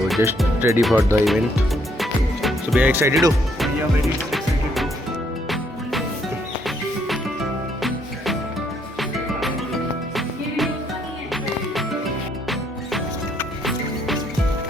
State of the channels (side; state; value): both; normal; correlation 0.70